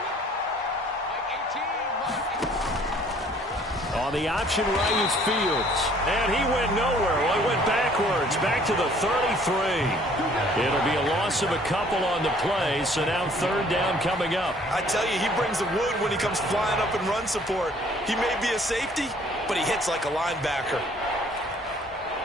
On the option right is Fields. And he went nowhere. Well, he went backwards. Back to the 33. It'll be a loss of a couple on the play. So now 3rd down coming up. I tell you, he brings the wood when he comes flying up in run support. He may be a safety, but he hits like a linebacker.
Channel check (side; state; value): both; normal; correlation 0.57